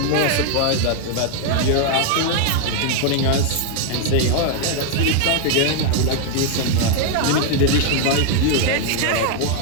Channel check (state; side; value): different; both; correlation 0.00